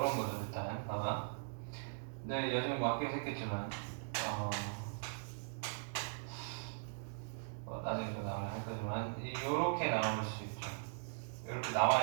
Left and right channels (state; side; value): silent; left; digital silence